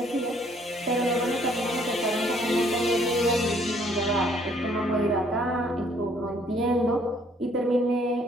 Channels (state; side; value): normal; both; correlation 0.63